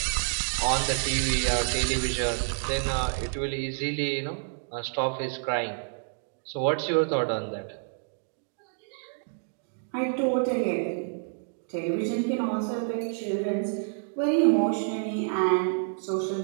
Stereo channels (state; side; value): silent; left; digital silence